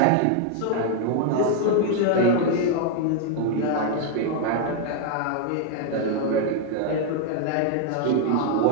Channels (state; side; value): different; both; correlation 0.00